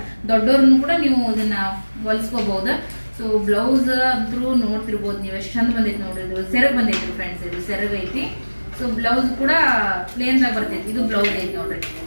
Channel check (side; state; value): both; inverted; correlation -1.00